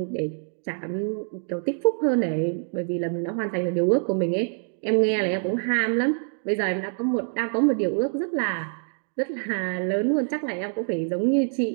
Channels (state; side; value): silent; left; 59 dB below the other